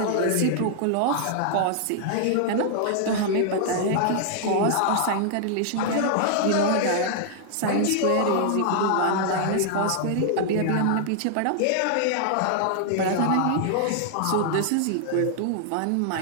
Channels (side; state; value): both; different; correlation -0.01